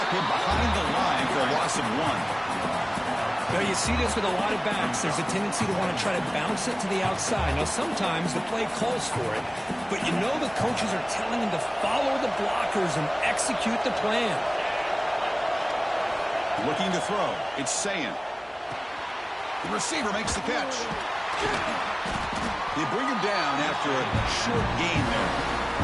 him behind the line for a loss of 1. Now, you see this with a lot of backs. There's a tendency to want to try to bounce it to the outside. Now, sometimes the play calls for it, but you know the coaches are telling him to follow the blockers and execute the plan. Looking to throw. It's Sayin. The receiver makes the catch. They bring him down after a short gain there.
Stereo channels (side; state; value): both; identical; correlation 1.00